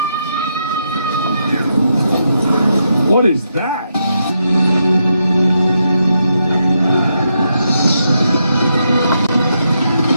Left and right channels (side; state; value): both; inverted; correlation -0.81